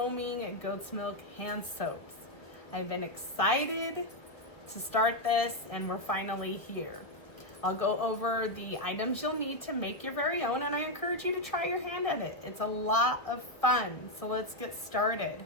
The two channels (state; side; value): late; right; 1.4 ms